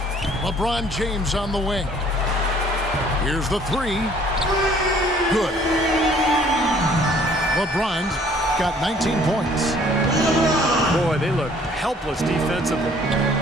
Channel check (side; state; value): both; normal; correlation 0.57